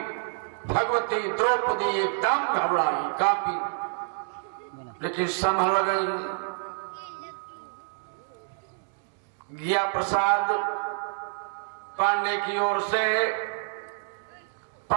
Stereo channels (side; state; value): left; silent; digital silence